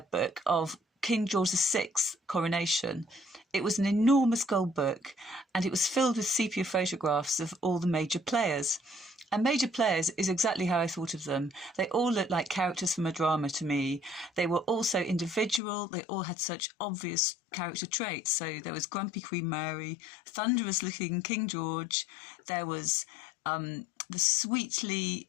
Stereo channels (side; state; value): right; drops out; at 15.6 s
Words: book of King George VI's coronation. It was an enormous gold book, and it was filled with sepia photographs of all the major players. And major players is exactly how I thought of them. They all looked like characters from a drama to me. They were also individual. They all had such obvious character traits. So there was grumpy Queen Mary, thunderous looking King George. There was the